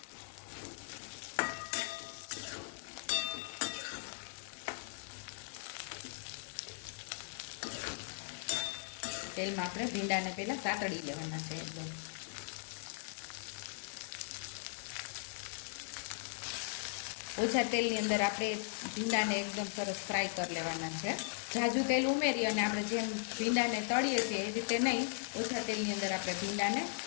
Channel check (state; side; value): silent; right; 52 dB below the other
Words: તેલમાં આપણે ભીંડાને પહેલા સાતળી લેવાના છે એકદમ। ઓછા તેલની અંદર આપણે ભીંડાને એકદમ સરસ ફ્રાય કરી લેવાના છે। ઝાઝું તેલ ઉમેરી અને આપણે જેમ ભીંડાને તળીએ છીએ એ રીતે નહીં, ઓછા તેલની અંદર આપણે ભીંડાને